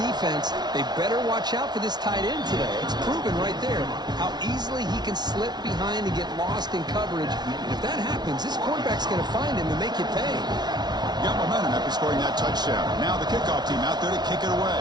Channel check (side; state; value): left; late; 0.20 ms